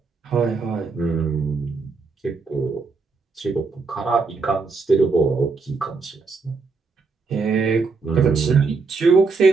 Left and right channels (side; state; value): left; quieter; 4.5 dB